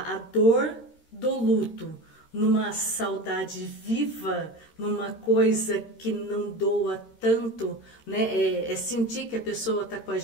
dor do luto numa saudade viva, numa coisa que não doa tanto, né? É sentir que a pessoa está com a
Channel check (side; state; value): right; late; 13 ms